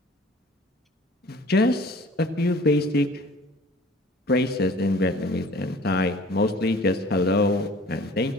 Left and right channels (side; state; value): both; normal; correlation 0.49